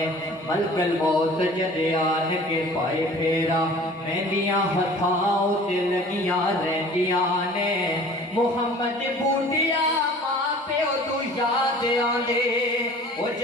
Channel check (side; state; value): both; normal; correlation 0.46